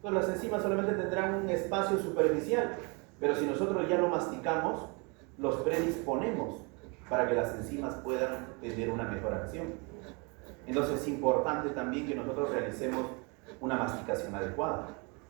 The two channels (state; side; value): quieter; left; 31.1 dB